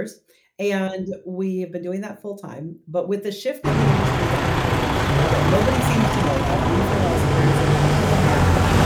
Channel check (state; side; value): identical; both; correlation 1.00